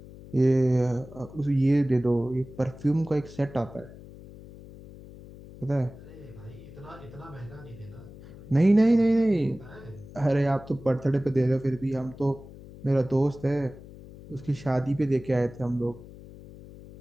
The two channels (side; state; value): left; noise; hum, 17 dB below the sound